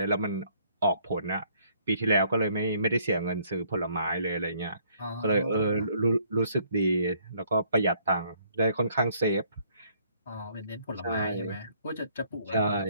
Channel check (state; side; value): inverted; both; correlation -0.64